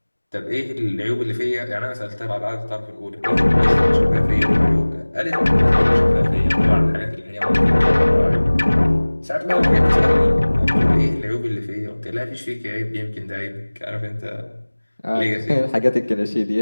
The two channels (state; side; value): inverted; both; correlation -1.00